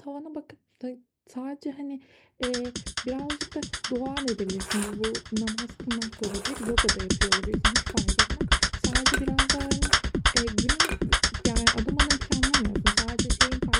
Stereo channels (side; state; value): both; identical; correlation 1.00